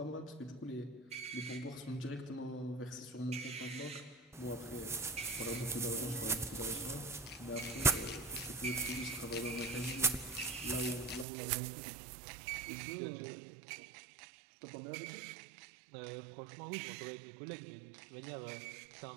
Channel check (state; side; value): drops out; left; at 11.2 s